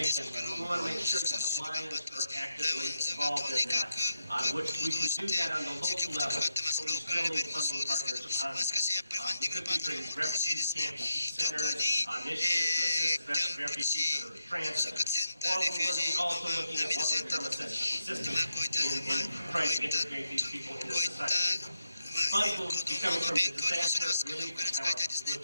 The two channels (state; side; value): inverted; both; correlation -0.84